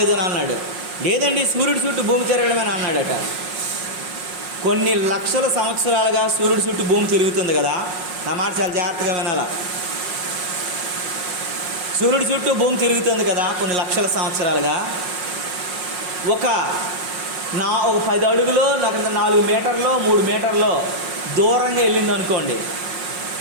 అని అన్నాడు. లేదండి సూర్యుడి చుట్టూ భూమి తిరగడమేని అన్నాడట. కొన్ని లక్షల సంవత్సరాలుగా సూర్యుడి చుట్టూ భూమి తిరుగుతుంది కదా. నా మాట చాలా జాగ్రత్తగా వినాలా. సూర్యుడి చుట్టూ భూమి తిరుగుతుంది కదా కొన్ని లక్షల సంవత్సరాలుగా. ఒక 10 అడుగులో 4 మీటర్లో 3 మీటర్లో దూరంగా వెళ్ళింది అనుకోండి.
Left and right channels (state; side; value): late; left; 5.5 ms